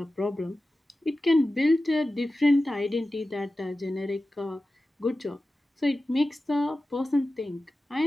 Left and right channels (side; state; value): both; normal; correlation 0.94